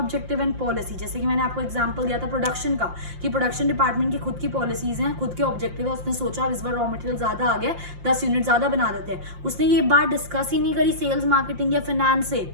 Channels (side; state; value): left; late; 5.7 ms